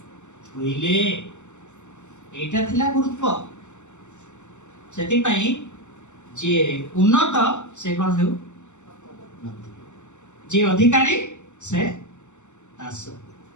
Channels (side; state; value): right; late; 0.84 ms